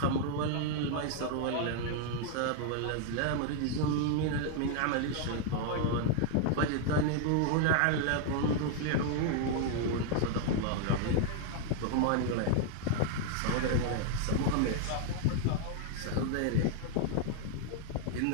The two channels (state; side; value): different; both; correlation 0.00